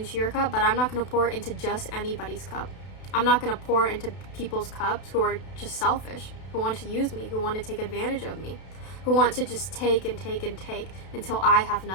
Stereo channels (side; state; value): right; late; 32 ms